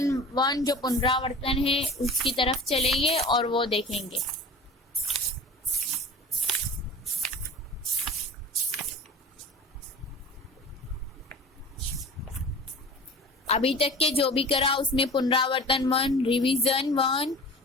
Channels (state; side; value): normal; both; correlation 0.38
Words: 1 जो पुनरावर्तन है उसकी तरफ चलेंगे और वो देखेंगे। अभी तक के जो भी करा उसमें पुनरावर्तन 1, revision 1,